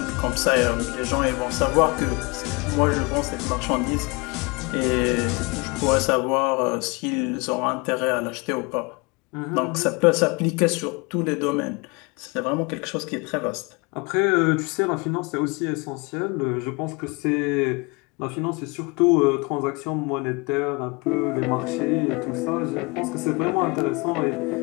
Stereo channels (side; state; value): right; quieter; 28.0 dB